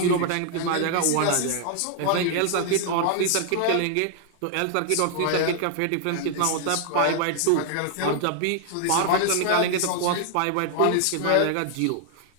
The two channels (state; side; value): different; both; correlation 0.00